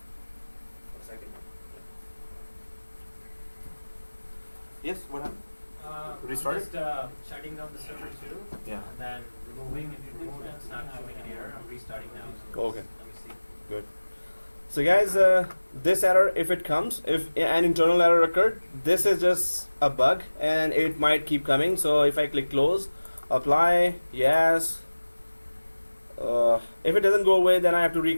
A second. Yes, what happened? Restart it? Just shutting down the server too. Yeah. And then removing it. It's not showing an error. I'm restarting now. Okay. Let me see. Good. So guys, this error, if it comes, if an internal error occurred, this is just a bug and it might keep coming. So if I click close, apply, yes. If it doesn't go away, then I have to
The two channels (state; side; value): inverted; both; correlation -1.00